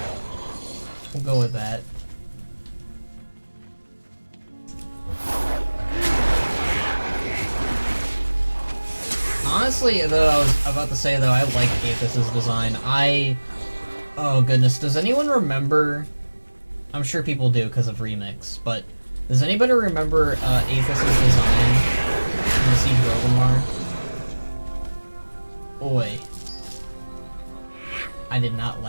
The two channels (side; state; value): both; inverted; correlation -1.00